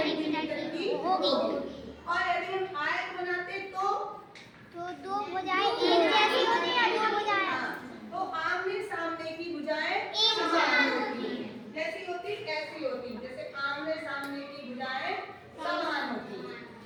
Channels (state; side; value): identical; both; correlation 1.00